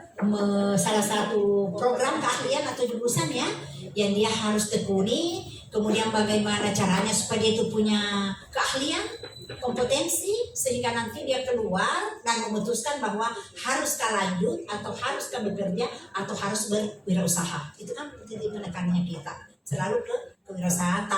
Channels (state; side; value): identical; both; correlation 1.00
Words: salah satu program keahlian atau jurusan ya yang dia harus tekuni, kemudian bagaimana caranya supaya dia itu punya keahlian, kompetensi sehingga nanti dia keluar dan memutuskan bahwa haruskah lanjut atau haruskah bekerja atau harus berwirausaha. Itu kan titik penekanannya kita selalu ke kewirausahaan